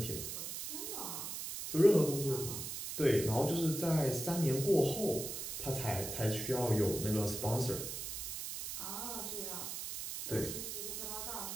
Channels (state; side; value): noise; right; hiss, 5 dB below the sound